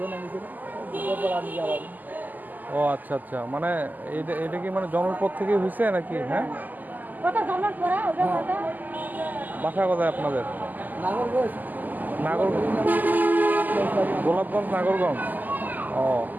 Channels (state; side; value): late; left; 0.084 ms